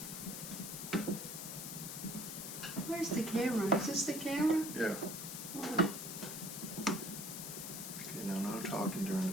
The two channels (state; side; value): noise; left; hiss, 7 dB below the sound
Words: Where's the camera? Is this the camera? Yeah. Wow. Okay, now no talking during